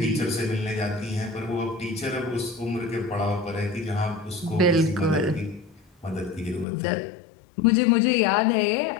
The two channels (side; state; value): right; drops out; at 6.7 s